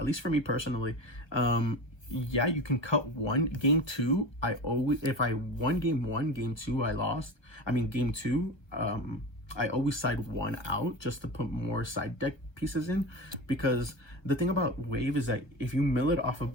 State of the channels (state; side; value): late; right; 1.3 ms